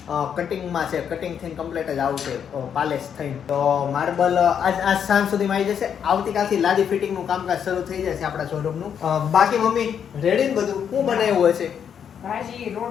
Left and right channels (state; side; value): quieter; right; 8.1 dB